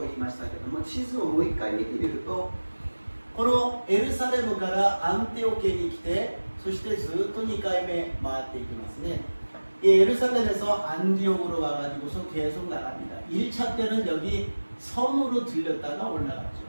言いましたけども、地図をもう一回見てみると、このエルサレムからアンテオケに来て、そしてずっと2回目回っていきますね. 이 예루살렘에서 안디옥으로 와가지고서 계속 나갑니다. 1차 때는 여기 섬으로 들렸다가 올라갔죠.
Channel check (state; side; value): inverted; both; correlation -1.00